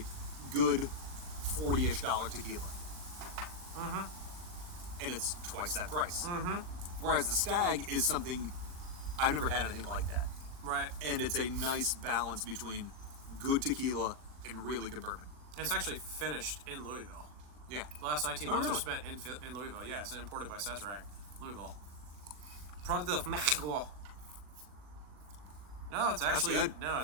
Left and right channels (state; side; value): late; left; 39 ms